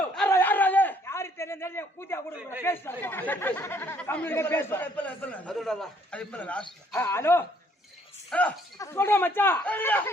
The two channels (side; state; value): both; normal; correlation 0.64